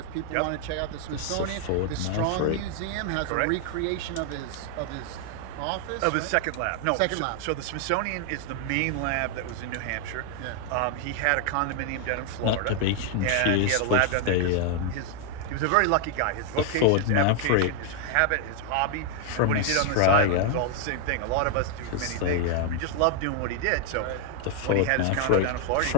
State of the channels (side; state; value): both; different; correlation 0.00